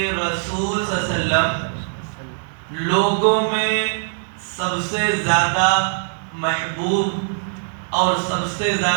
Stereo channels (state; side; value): silent; left; 64 dB below the other